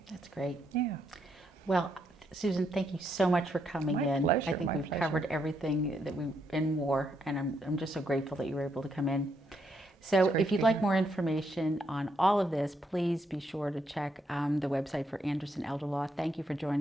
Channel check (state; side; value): normal; both; correlation 0.77